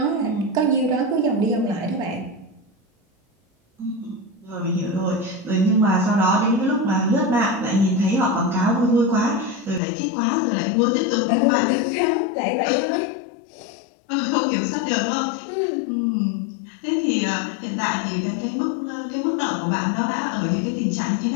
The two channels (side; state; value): right; drops out; at 9.8 s